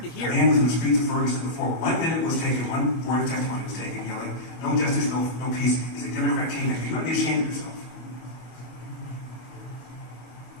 to hear. A man was in the streets of Ferguson before 1 minute was taken, one word of testimony was taken, yelling, no justice, no peace. He's a Democrat kingmaker. You ought to be ashamed of yourself.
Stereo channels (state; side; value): late; right; 25 ms